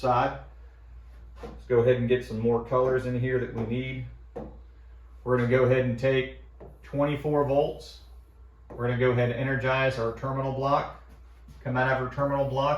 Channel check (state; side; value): identical; both; correlation 1.00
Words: Let's go ahead and get some more colors in here that we need. We're going to go ahead and take 24 volts. We're going to go ahead and energize our terminal block. Come out of our terminal